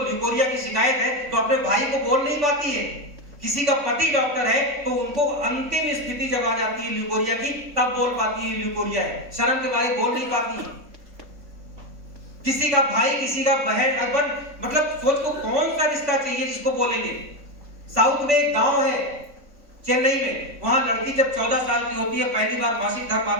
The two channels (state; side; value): late; left; 3.5 ms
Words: लिकोरिया की शिकायत है, तो अपने भाई को बोल नहीं पाती है किसी का पति डॉक्टर है तो उनको अंतिम स्थिति जब आ जाती है ल्यूकोरिया की, तब बोल पाती है ल्यूकोरिया है, शर्म के बारे बोल नहीं पाती है। किसी का भाई, किसी का बहन, अगर मतलब सोच को कौन सा रिश्ता चाहिए जिसको बोलेंगे। साउथ में एक गांव है चेन्नई में, वहां लड़की जब 14 साल की होती है, पहली बार मासिक धर्म